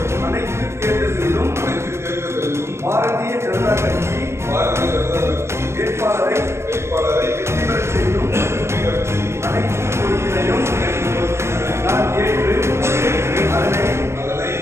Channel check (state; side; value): late; left; 0.13 ms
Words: அனைத்து தேர்தல்களிலும் பாரதிய ஜனதா கட்சி வேட்பாளரை வெற்றி பெறச் செய்யும் அனைத்து பொறுப்பினையும் நான் ஏற்று அதனை